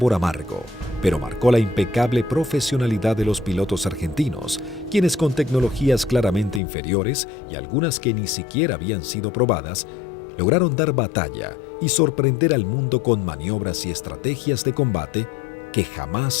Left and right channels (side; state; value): right; drops out; at 6.6 s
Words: amargo, pero marcó la impecable profesionalidad de los pilotos argentinos, quienes con tecnologías claramente inferiores y algunas que ni siquiera habían sido probadas, lograron dar batalla y sorprender al mundo con maniobras y estrategias de combate que